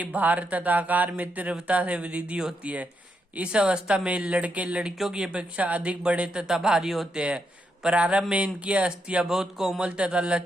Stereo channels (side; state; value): both; normal; correlation 0.81